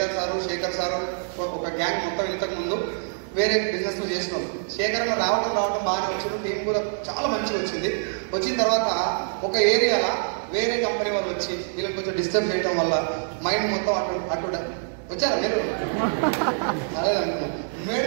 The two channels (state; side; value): silent; left; digital silence